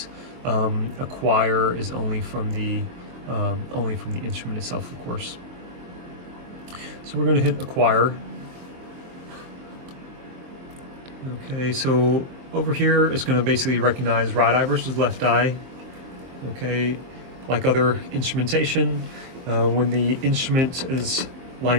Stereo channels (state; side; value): late; left; 23 ms